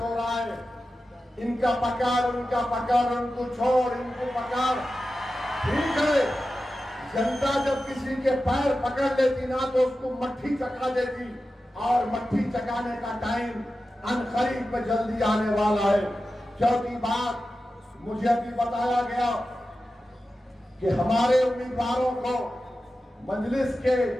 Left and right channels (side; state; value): both; normal; correlation 0.93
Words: रहा है। इनका पकड़, उनका पकड़, उनको छोड़, इनको पकड़। ठीक है, जनता जब किसी के पैर पकड़ लेती ना तो उसको मट्ठी चका देती, और मट्ठी चकाने का टाइम अनकरीब में जल्दी आने वाला है। चौथी बात, मुझे अभी बताया गया कि हमारे उम्मीदवारों को, मजलिस के